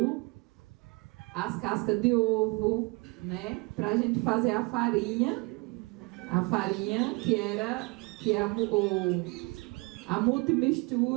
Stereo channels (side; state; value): left; quieter; 28.0 dB